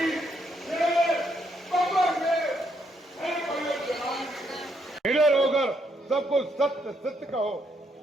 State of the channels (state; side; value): normal; both; correlation 0.75